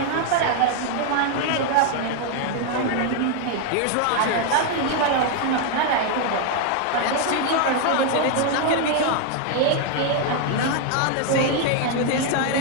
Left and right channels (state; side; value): different; both; correlation 0.00